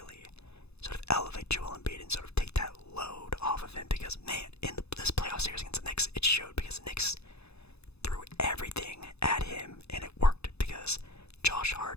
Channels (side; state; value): right; late; 0.79 ms